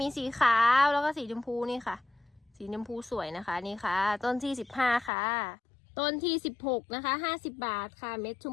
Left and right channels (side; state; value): right; drops out; at 5.1 s